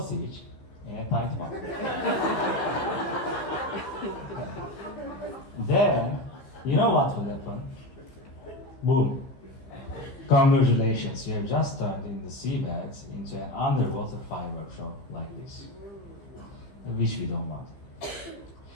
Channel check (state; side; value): late; right; 15 ms